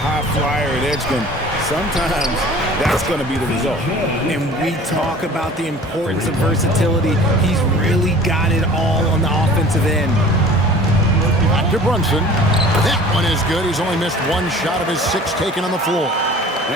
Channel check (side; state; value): both; normal; correlation 0.45